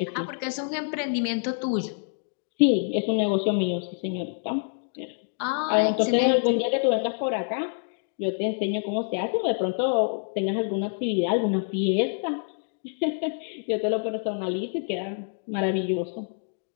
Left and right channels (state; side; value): silent; right; digital silence